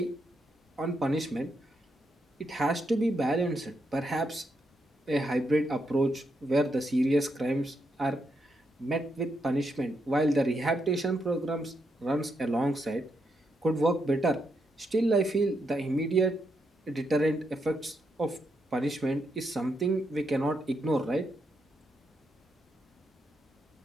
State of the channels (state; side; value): normal; both; correlation 0.81